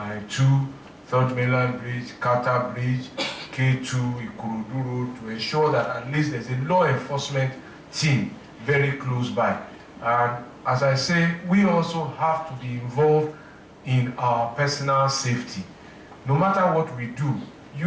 2, 3rd Mainland Bridge, Carter Bridge, K2, Ikorodu Road, to ensure that at least there's a law enforcement team very close by. And as I say, we also have to be involved in our personal safety. No matter what we do,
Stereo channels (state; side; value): identical; both; correlation 1.00